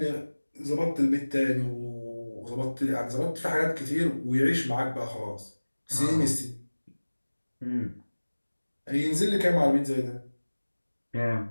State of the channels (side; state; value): both; inverted; correlation -1.00